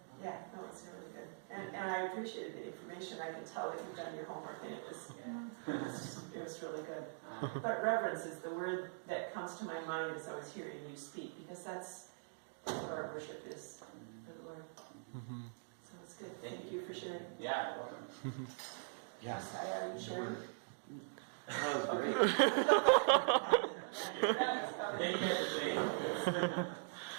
yeah, no, it's really good. And I appreciated the information. I can tell that you've done your homework and it was really good. But reverence is the word that comes to my mind as I was hearing you speak, because that's what our worship is for the Lord. So it's good. Thank you for sharing. Yeah, you're welcome. Yes. Are you sharing? That was great. Thank you for saying.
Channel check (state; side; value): silent; left; digital silence